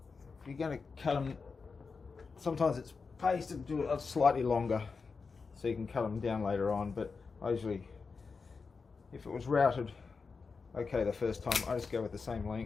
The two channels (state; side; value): quieter; right; 4.8 dB